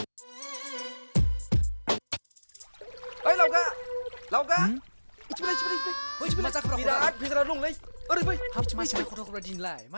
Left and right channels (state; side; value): inverted; both; correlation -1.00